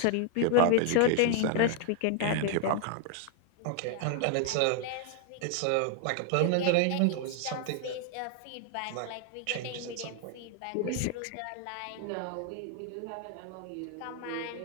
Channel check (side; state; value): both; different; correlation 0.00